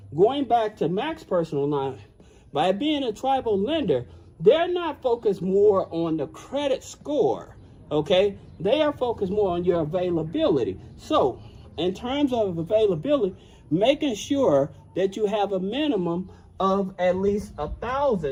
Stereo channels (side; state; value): both; identical; correlation 1.00